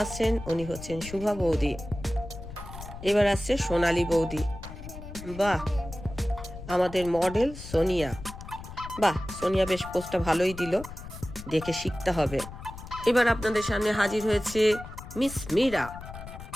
আসছেন উনি হচ্ছেন শুভা বৌদি। এবার আসছে সোনালী বৌদি, বাহ আমাদের মডেল সোনিয়া, বাহ সোনিয়া বেশ পোস্টটা ভালোই দিল, দেখে শিখতে হবে। এবার আপনাদের সামনে হাজির হয়েছে মিস মীরা।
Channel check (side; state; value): left; noise; rumble, 13 dB below the sound